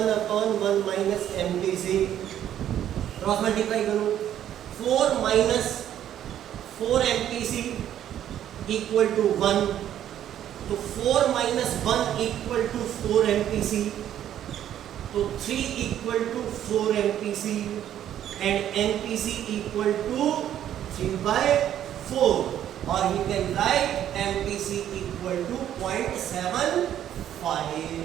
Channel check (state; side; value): quieter; left; 10.9 dB